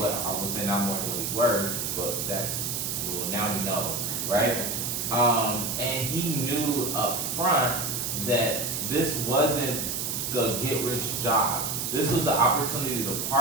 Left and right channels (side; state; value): right; noise; hiss, 2 dB below the sound